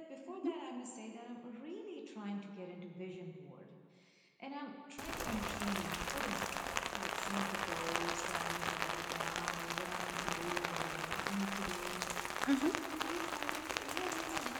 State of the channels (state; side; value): identical; both; correlation 1.00